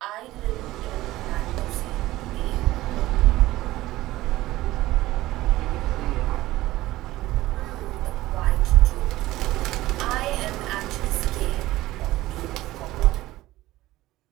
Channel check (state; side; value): quieter; left; 16.9 dB